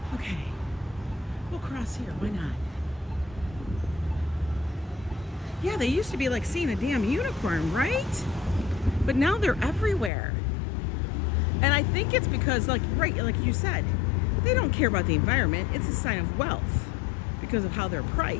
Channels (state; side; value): drops out; right; at 10.1 s